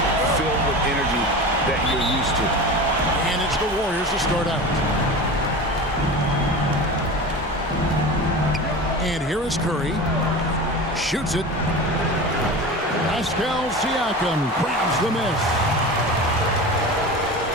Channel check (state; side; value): normal; both; correlation 0.31